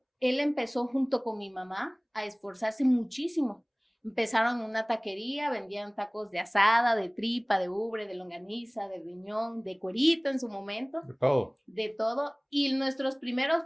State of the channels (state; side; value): identical; both; correlation 1.00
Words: él empezó junto con mi mamá a esforzarse muchísimo. Empezaron en una taquería, vendían tacos de asada, de tripa, de ubre, de longaniza, de riñón, de cuerito en su momento, De todo. de todo. Y nuestros primeros